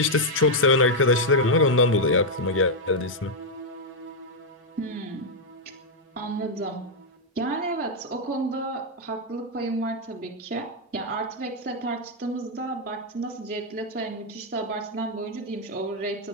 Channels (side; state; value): both; normal; correlation -0.02